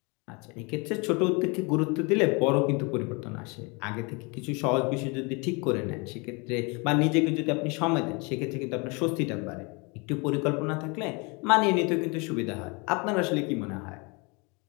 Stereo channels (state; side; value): quieter; right; 30.0 dB